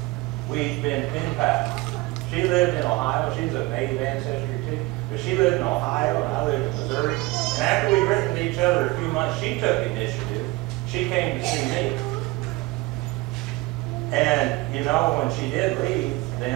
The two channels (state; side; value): quieter; left; 21.3 dB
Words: We'd been pen pals. She lived in Ohio. She's of Native ancestry too. But she lived in Ohio and I lived in Missouri. And after we'd written to each other a few months, she took initiative. She came to see me. And, when she did leave,